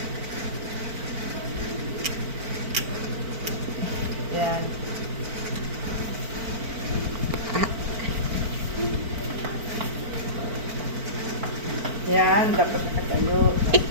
Yan. Yan, dapat nakatayo.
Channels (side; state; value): left; late; 4.5 ms